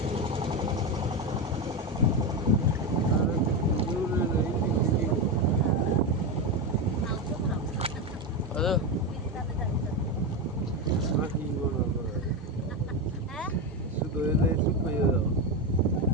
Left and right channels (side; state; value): both; normal; correlation 0.13